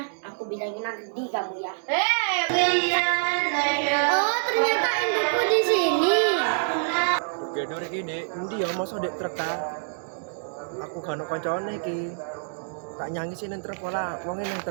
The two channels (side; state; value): left; silent; digital silence